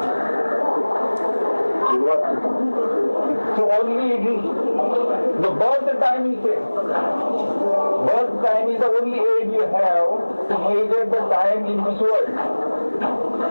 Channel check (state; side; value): inverted; both; correlation -1.00